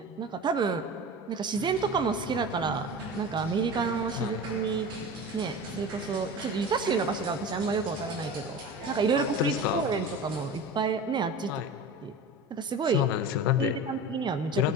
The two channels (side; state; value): both; normal; correlation 0.32